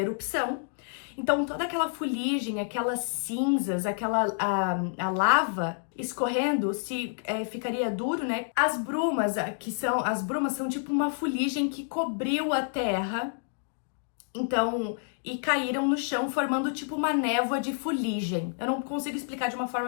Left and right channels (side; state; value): right; silent; digital silence